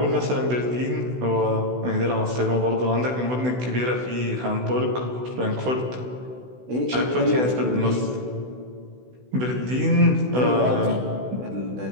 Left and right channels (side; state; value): left; late; 16 ms